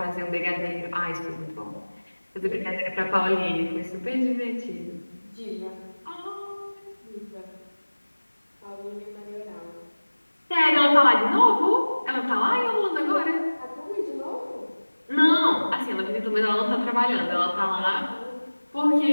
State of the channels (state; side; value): inverted; both; correlation -1.00